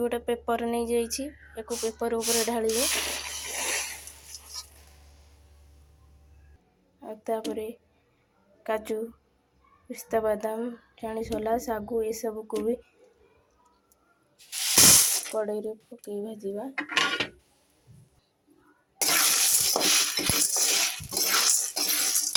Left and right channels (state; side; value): identical; both; correlation 1.00